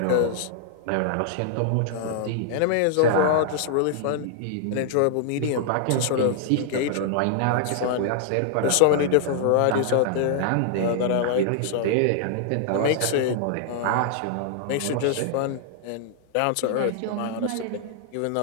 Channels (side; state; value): both; different; correlation -0.01